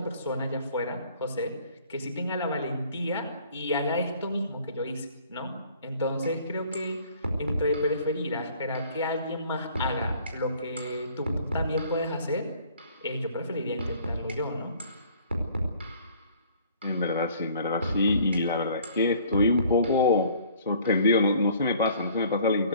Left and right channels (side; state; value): both; inverted; correlation -0.55